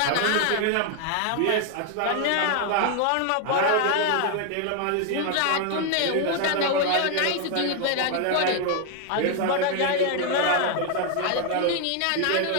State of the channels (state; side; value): different; both; correlation 0.00